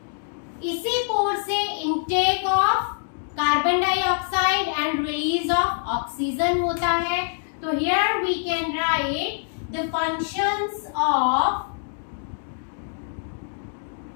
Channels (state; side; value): silent; right; digital silence